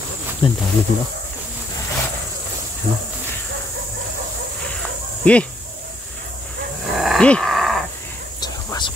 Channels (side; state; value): both; normal; correlation 0.70